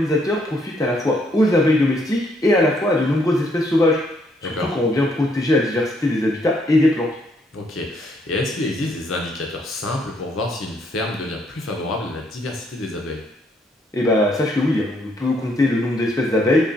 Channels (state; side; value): normal; both; correlation 0.71